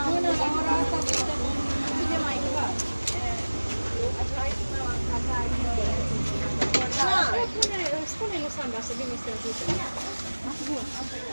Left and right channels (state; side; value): inverted; both; correlation -1.00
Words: Spune-i lui Sandra să vină să ajute.